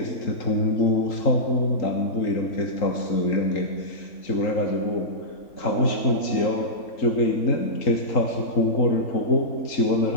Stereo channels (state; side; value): late; right; 3.8 ms